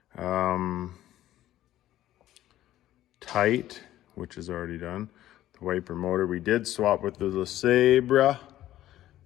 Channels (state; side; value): quieter; right; 13.6 dB